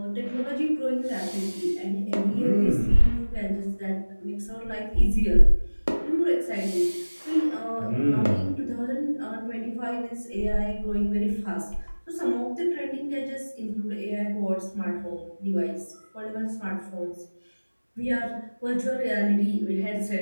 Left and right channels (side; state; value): both; inverted; correlation -1.00